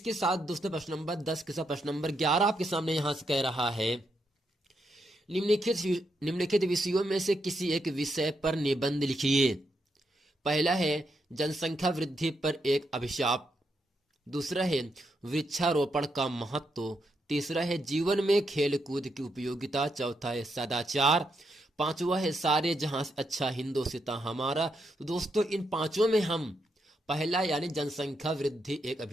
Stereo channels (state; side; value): normal; both; correlation 0.81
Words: साथ दोस्तों प्रश्न नंबर 10 के साथ प्रश्न नंबर 11 आपके सामने यहां से कह रहा है निम्नलिखित विषयों में से किसी एक विषय पर निबंध लिखिए। पहला है जनसंख्या वृद्धि पर एक अभिशाप। दूसरा है वृक्षारोपण का महत्व। तीसरा है जीवन में खेल कूद की उपयोगिता। चौथा है सदाचार। पांचवा है सारे जहां से अच्छा हिंदुस्तान हमारा। तो दोस्तों इन पांचों में हम पहला यानी जनसंख्या वृद्धि एक